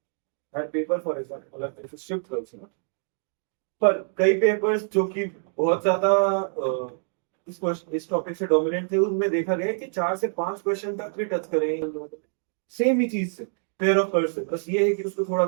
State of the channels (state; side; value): silent; left; digital silence